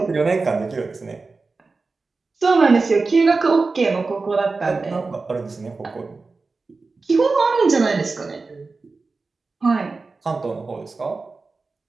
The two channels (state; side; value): quieter; left; 4.0 dB